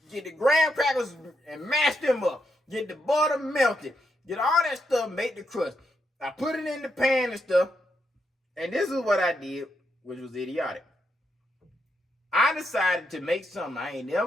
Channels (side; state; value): both; normal; correlation 0.81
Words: get the graham crackers and mash them up, get the butter melted, get all that stuff, make the crust. I put it in the pan and stuff, and this is what I did, which was idiotic. I decided to make something I ain't